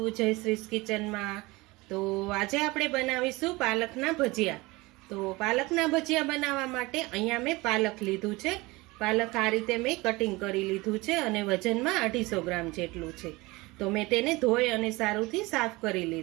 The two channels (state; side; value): quieter; left; 22.4 dB